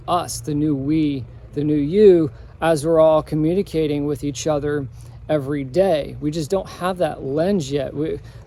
us, the new we, the new you, as we're all communicating with each other every day? We just don't have that lens yet.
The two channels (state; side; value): identical; both; correlation 1.00